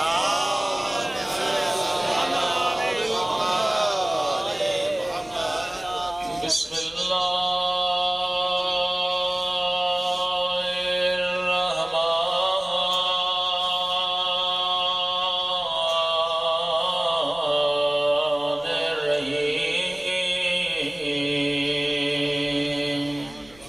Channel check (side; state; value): left; noise; rumble, 25 dB below the sound